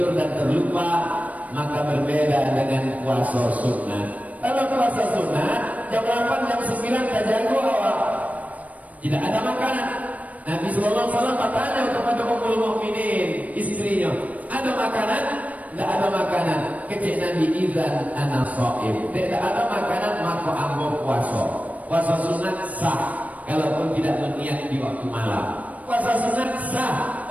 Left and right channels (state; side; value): late; left; 0.070 ms